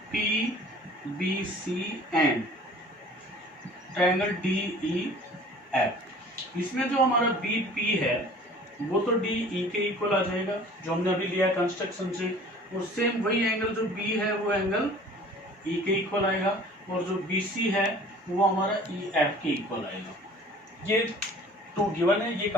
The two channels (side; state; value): both; normal; correlation 0.48